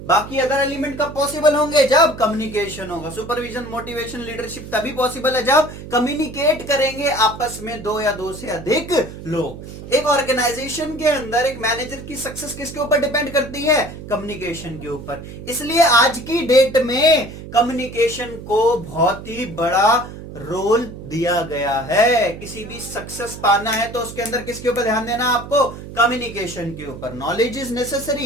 बाकी अदर एलिमेंट कब पॉसिबल होंगे, जब कम्युनिकेशन होगा। सुपरविजन, मोटिवेशन, लीडरशिप तभी पॉसिबल है जब कम्युनिकेट करेंगे आपस में 2 या 2 से अधिक लोग। एक ऑर्गेनाइजेशन के अंदर एक मैनेजर की सक्सेस किसके ऊपर डिपेंड करती है, कम्युनिकेशन के ऊपर। इसलिए आज की डेट में कम्युनिकेशन को बहुत ही बड़ा रोल दिया गया है। किसी भी सक्सेस पाना है तो उसके अंदर किसके ऊपर ध्यान देना, आपको कम्युनिकेशन के ऊपर। Knowledge is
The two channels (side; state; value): right; noise; hum, 12 dB below the sound